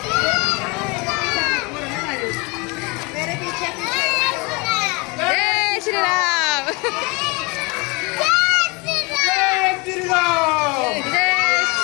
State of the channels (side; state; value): right; quieter; 27.8 dB